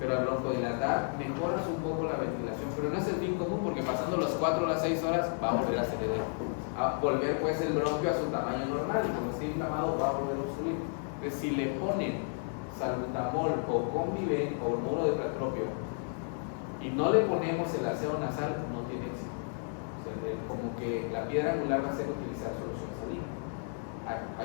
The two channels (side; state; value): right; silent; 56 dB below the other